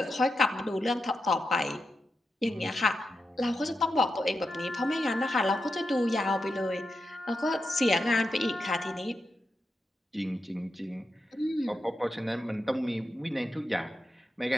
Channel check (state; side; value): normal; both; correlation 0.87